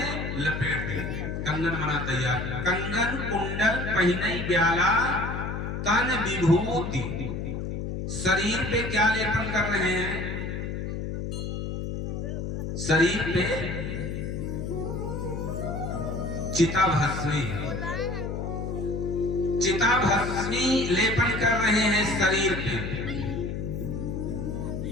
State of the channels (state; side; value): noise; left; hum, 4 dB below the sound